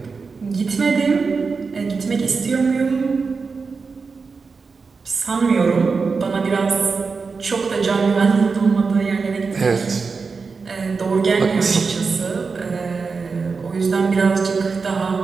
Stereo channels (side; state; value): left; quieter; 4.8 dB